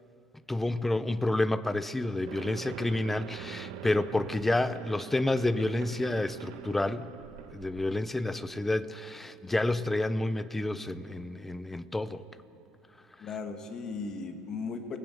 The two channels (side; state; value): both; normal; correlation 0.92